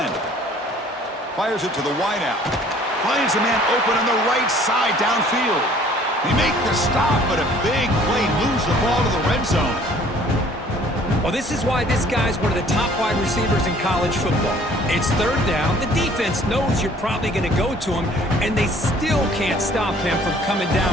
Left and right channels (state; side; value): normal; both; correlation 0.55